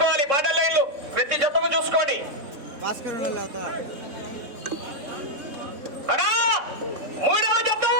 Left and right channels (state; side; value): late; left; 3.6 ms